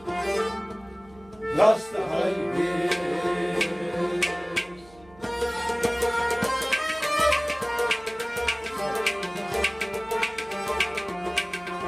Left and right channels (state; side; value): noise; right; hum, 25 dB below the sound